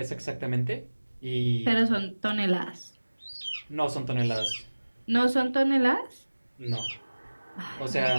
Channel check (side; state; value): both; inverted; correlation -1.00